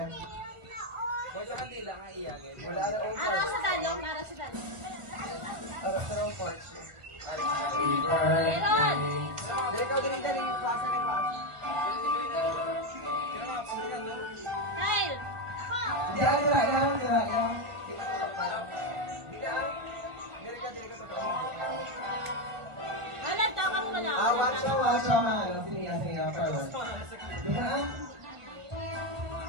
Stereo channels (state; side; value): late; left; 1.3 ms